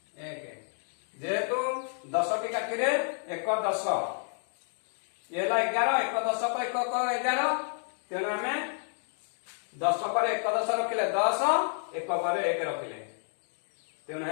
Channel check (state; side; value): silent; right; 58 dB below the other